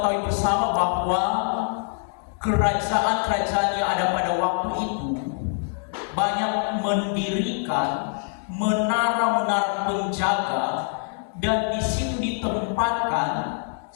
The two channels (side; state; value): right; silent; 60 dB below the other